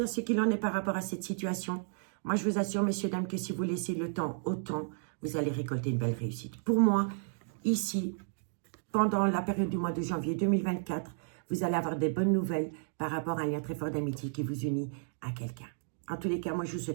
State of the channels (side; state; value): left; silent; digital silence